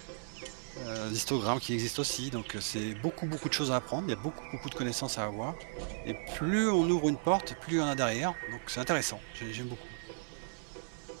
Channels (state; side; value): silent; left; digital silence